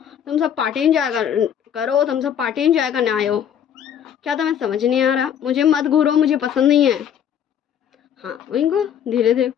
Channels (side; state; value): right; quieter; 9.0 dB